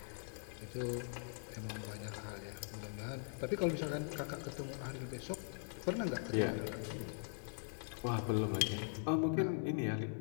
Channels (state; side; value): silent; right; 50 dB below the other